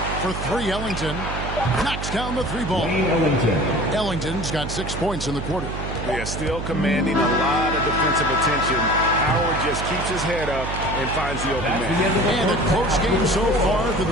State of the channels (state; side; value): noise; right; hum, 6 dB below the sound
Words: For 3, Ellington. Knocks down the 3 ball. Ellington's got 6 points in the quarter. They are still commanding a lot of defensive attention. Howard just keeps his head up and finds the open man. And a close game so far through